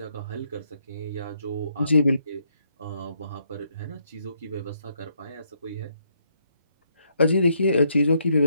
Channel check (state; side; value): inverted; both; correlation -0.74